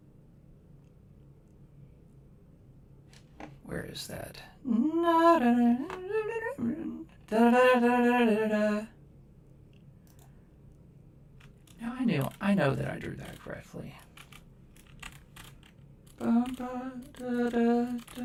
Where is that? Now I know that I drew that correctly.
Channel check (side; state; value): both; identical; correlation 1.00